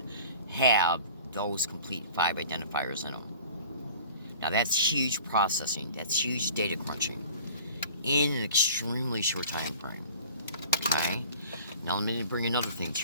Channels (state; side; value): inverted; both; correlation -0.46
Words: have those complete 5 identifiers in them. Now that's huge processing, that's huge data crunching in an extremely short time frame. Okay? Now let me bring another thing